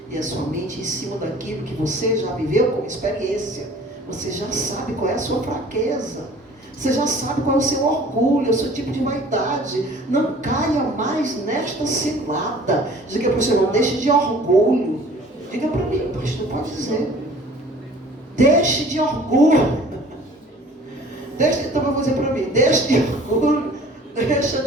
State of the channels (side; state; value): both; normal; correlation 0.49